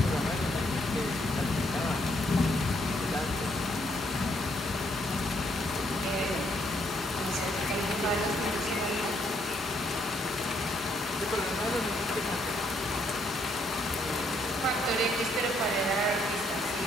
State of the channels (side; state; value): both; normal; correlation 0.72